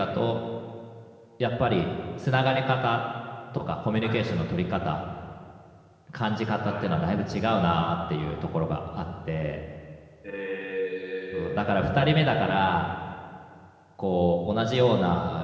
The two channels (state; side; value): identical; both; correlation 1.00